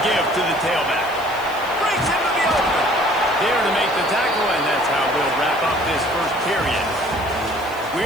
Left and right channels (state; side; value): noise; left; hiss, 20 dB below the sound